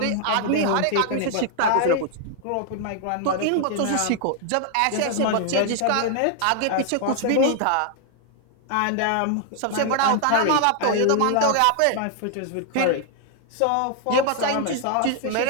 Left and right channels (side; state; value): both; different; correlation 0.00